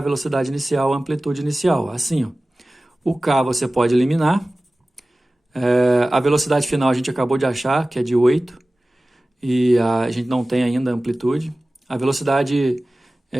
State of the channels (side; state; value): both; normal; correlation 0.97